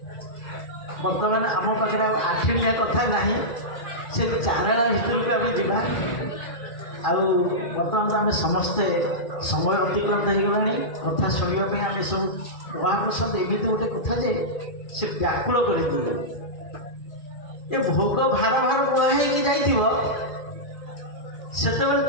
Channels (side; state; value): right; late; 1.9 ms